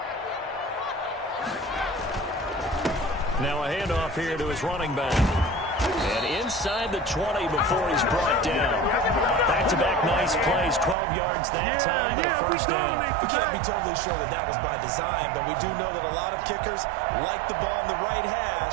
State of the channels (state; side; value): drops out; left; at 11.0 s